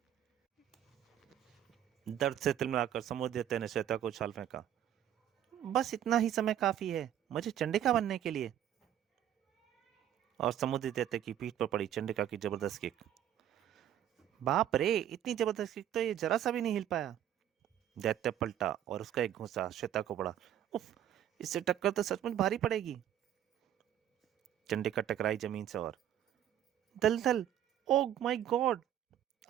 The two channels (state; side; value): quieter; left; 10.8 dB